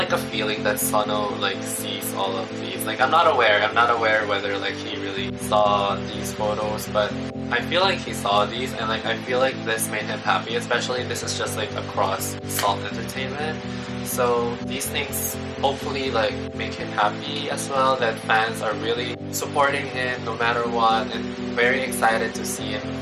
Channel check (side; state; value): both; identical; correlation 1.00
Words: a feeling that Seonho like sees all of these. Like I'm not aware whether like he really saw these photos, but I feel like he saw these, and like I feel like this made him happy, especially this is just like Across Salt Entertainment. So these things hopefully like make him happy as well, that fans are really supporting him no matter what, and very excited to see him,